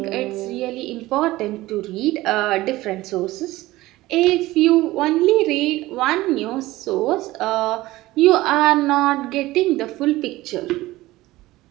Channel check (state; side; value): quieter; left; 17.9 dB